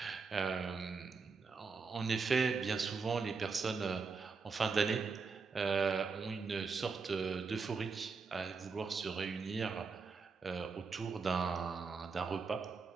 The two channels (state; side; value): quieter; left; 4.9 dB